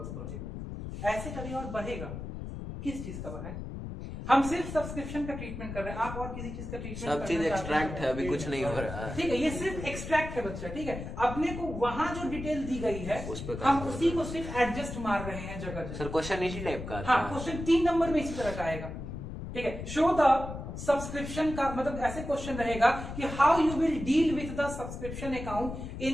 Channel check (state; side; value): noise; left; rumble, 8 dB below the sound